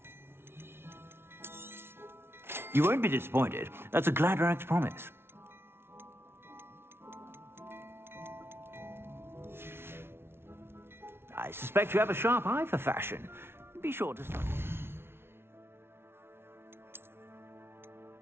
You won't be disappointed. That's a Gladrag's promise. I suspect you have a sharp eye for fashion. Be sure to study.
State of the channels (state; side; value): late; left; 0.12 ms